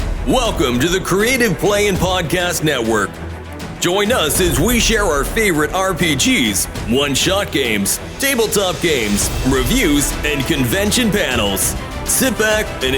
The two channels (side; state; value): both; identical; correlation 1.00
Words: Welcome to the Creative Play and Podcast Network. Join us as we share our favorite RPGs, one-shot games, tabletop games, reviews, and convention panels. Sit back and